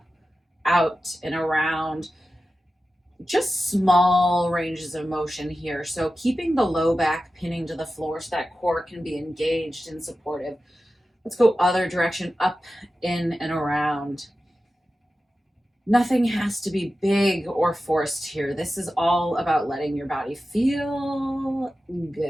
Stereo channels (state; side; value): normal; both; correlation 0.93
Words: out, and around. Just small ranges of motion here. So keeping the low back pinning to the floor so that core can be engaged and supportive. Let's go other direction, up, in, and around. Nothing has to be big or forced here. This is all about letting your body feel